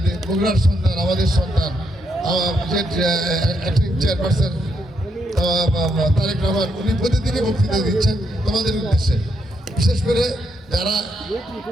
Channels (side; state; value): both; normal; correlation 0.78